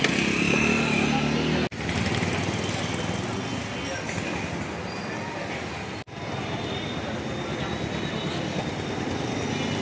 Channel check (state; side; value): identical; both; correlation 1.00